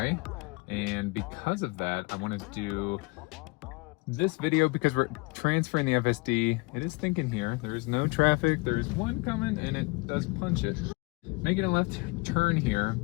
and because of that, I wanted to do this video because we're transferring the FSD. It is thinking here. There is no traffic. There is one coming, and it does punch it. Making a left turn here,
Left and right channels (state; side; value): quieter; right; 26.0 dB